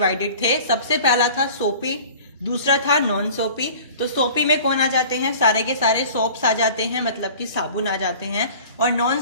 थे। सबसे पहला था सोपी, दूसरा था नॉन सोपी। तो सोपी में कौन आ जाते हैं, सारे के सारे सोप्स आ जाते हैं, मतलब कि साबुन आ जाते हैं। और नॉन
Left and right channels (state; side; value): inverted; both; correlation -0.44